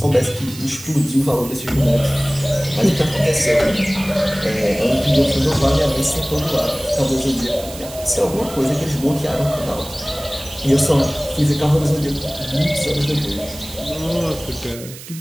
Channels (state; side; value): noise; right; hiss, 15 dB below the sound